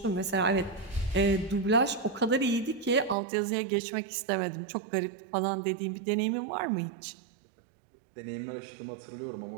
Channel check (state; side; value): drops out; left; at 3.2 s